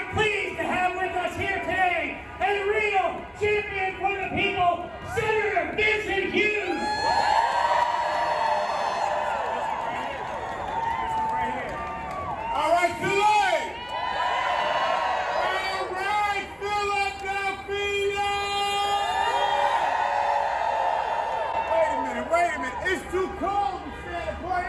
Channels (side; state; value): both; identical; correlation 1.00